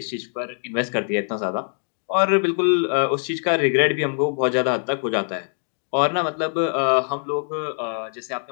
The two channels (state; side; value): silent; right; 55 dB below the other